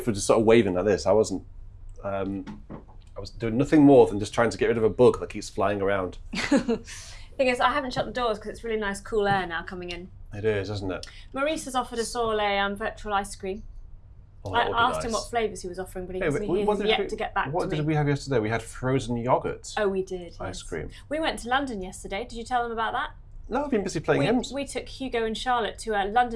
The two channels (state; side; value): identical; both; correlation 1.00